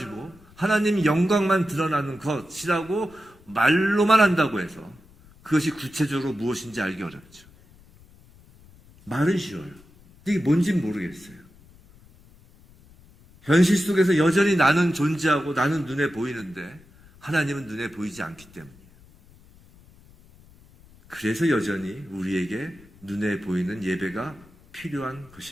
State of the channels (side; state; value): left; noise; rumble, 26 dB below the sound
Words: 하나님 영광만 드러나는 것이라고 말로만 한다고 해서 그것이 구체적으로 무엇인지 알기 어렵죠. 말은 쉬워요. 이게 뭔지는 모르겠어요. 현실 속에서 여전히 나는 존재하고 나는 눈에 보이는데 하나님은 눈에 보이지 않기 때문이에요. 그래서 여전히 우리에게 눈에 보이는 예배가 필요한